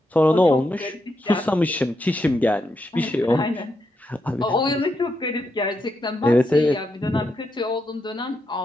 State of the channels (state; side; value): normal; both; correlation 0.83